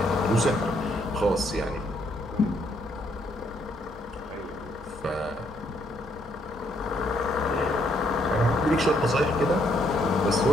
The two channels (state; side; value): normal; both; correlation 0.71